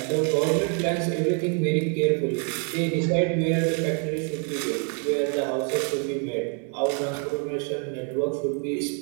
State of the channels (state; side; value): quieter; left; 39.7 dB